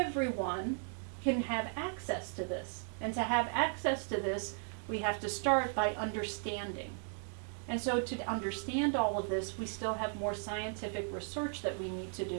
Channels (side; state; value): left; silent; 54 dB below the other